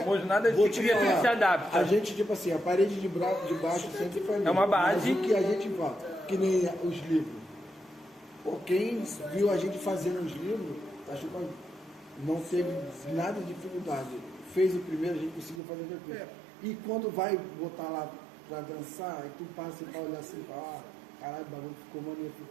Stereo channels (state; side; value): drops out; left; at 15.6 s